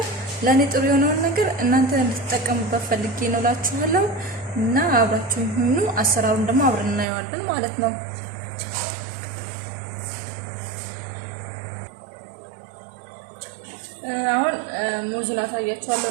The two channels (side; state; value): left; drops out; at 7.1 s